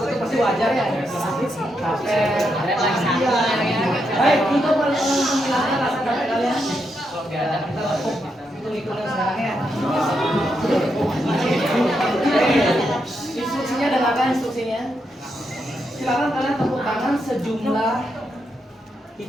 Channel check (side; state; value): both; normal; correlation 0.82